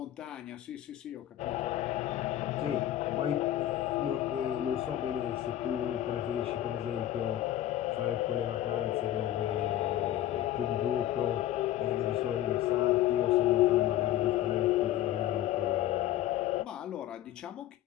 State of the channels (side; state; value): right; quieter; 13.1 dB